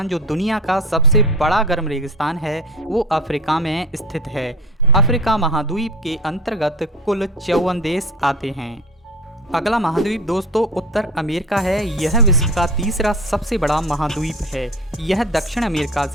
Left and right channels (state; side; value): normal; both; correlation 0.34